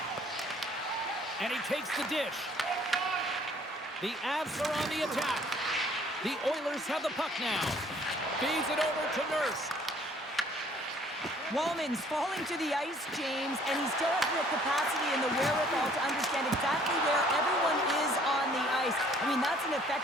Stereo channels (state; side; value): normal; both; correlation 0.59